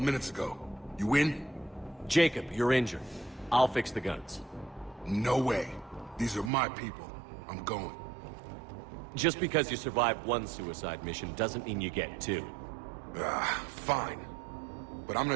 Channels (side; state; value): left; drops out; at 6.5 s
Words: minutes ago. You in? Jacob, you're injured. I'll fix the guns. No way. These are my people. I'm going. Just because you survived one suicide mission doesn't mean you get two. Fine. But I'm